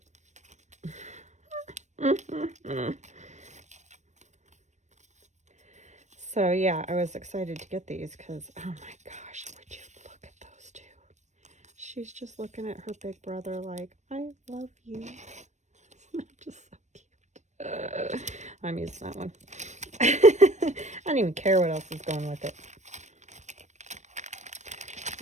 So yeah, I was excited to get these because, oh my gosh, would you look at those two? She's just looking at her big brother like, I love you. Just so cute. I'm using that one. I don't even care what else is going with it.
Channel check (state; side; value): late; left; 0.34 ms